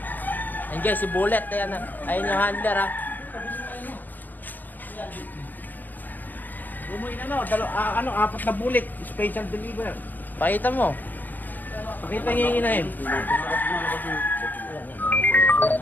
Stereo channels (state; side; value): late; right; 0.086 ms